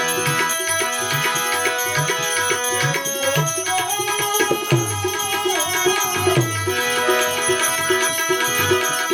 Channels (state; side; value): identical; both; correlation 1.00